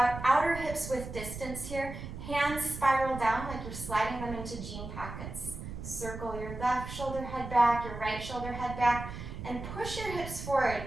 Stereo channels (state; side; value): noise; right; rumble, 9 dB below the sound